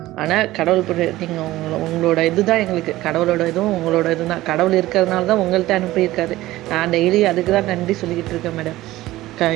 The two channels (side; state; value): left; quieter; 16.7 dB